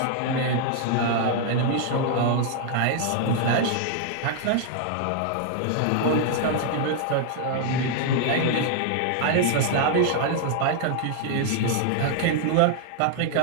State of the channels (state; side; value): different; both; correlation 0.00